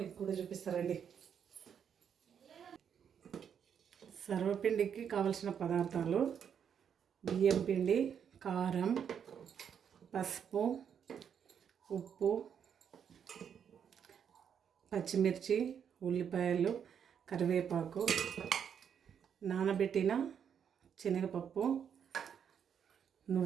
మీకు కూడా చూపిస్తారండి. సర్వపిండికి కావలసిన పదార్థాలు: బియ్యం పిండి, కారం, పసుపు, ఉప్పు, పచ్చిమిర్చి, ఉల్లిపాయలు, కరివేపాకు, నానబెట్టిన శనగపప్పు,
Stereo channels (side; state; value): left; quieter; 7.9 dB